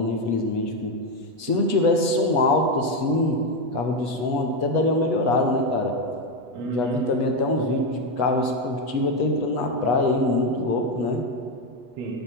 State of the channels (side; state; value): left; late; 8.2 ms